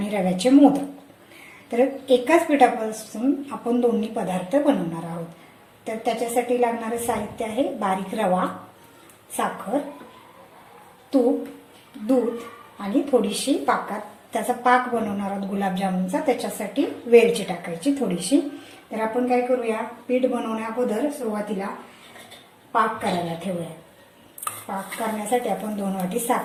रव्याचे मोदक। तर एकाच पिठापासून आपण दोन्ही पदार्थ बनवणार आहोत। तर त्याच्यासाठी लागणारे साहित्य आहे बारीक रवा, साखर, तूप, दूध आणि थोडीशी त्याचा पाक बनवणार आहोत गुलाबजामुनचा। त्याच्यासाठी वेलची टाकायची थोडीशी। तर आपण काय करूया, पीठ बनवण्या अगोदर सुरुवातीला पाक करायला ठेवूया। पाक करण्यासाठी आपण 2 वाटी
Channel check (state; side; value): identical; both; correlation 1.00